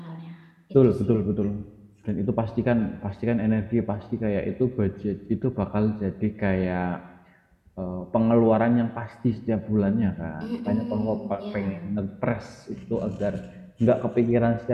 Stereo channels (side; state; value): both; identical; correlation 1.00